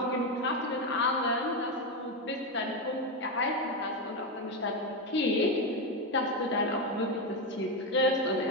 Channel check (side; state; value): both; normal; correlation 0.11